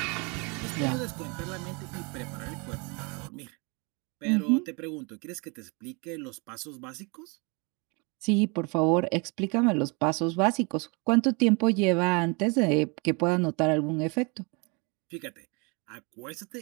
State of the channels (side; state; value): left; quieter; 30.8 dB